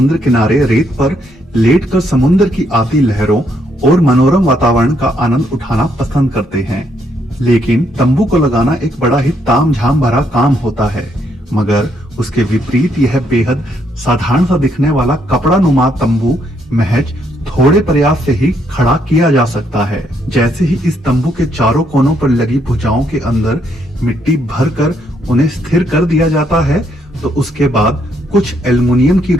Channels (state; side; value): normal; both; correlation 0.73